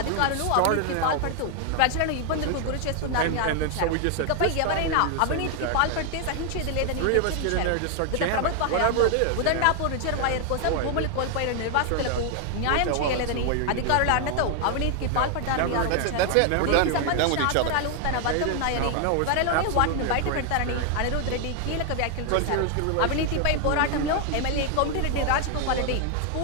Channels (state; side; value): different; both; correlation 0.00